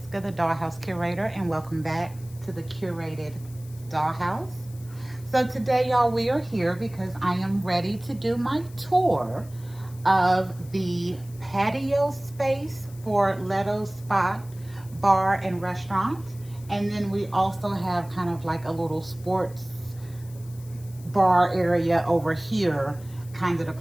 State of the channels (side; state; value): left; noise; hiss, 23 dB below the sound